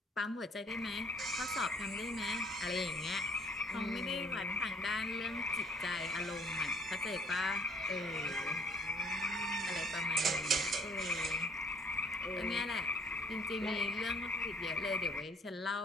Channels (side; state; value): both; normal; correlation 0.60